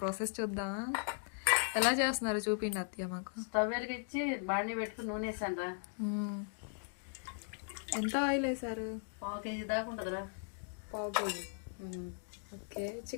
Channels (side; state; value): right; silent; digital silence